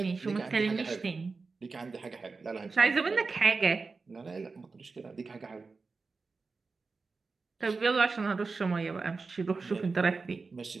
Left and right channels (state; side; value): quieter; left; 4.2 dB